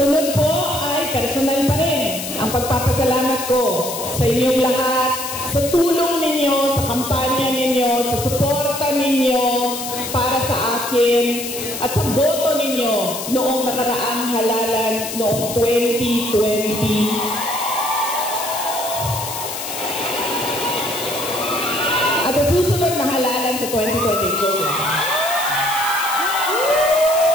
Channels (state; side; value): noise; left; hiss, 7 dB below the sound